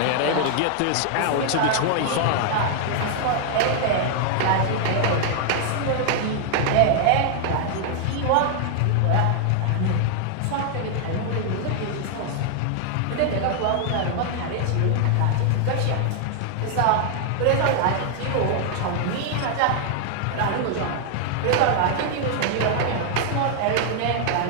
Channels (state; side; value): different; both; correlation 0.00